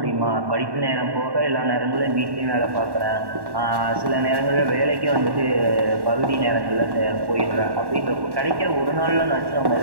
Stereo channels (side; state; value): left; late; 1.1 ms